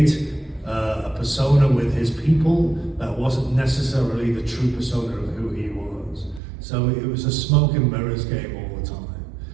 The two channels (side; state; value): left; drops out; at 6.4 s